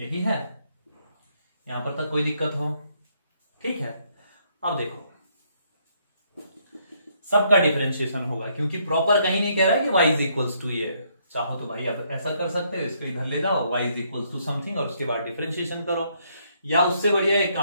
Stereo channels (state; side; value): inverted; both; correlation -0.71